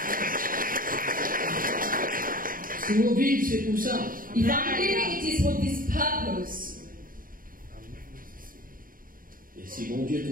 Si vous vivez, c'est pour ça. If I'm living, it is for this purpose. Et si bon Dieu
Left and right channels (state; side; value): late; left; 0.41 ms